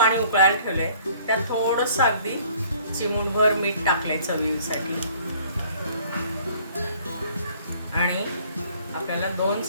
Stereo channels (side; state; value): both; inverted; correlation -0.55